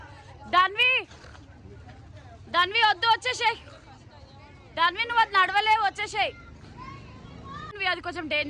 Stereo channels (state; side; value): identical; both; correlation 1.00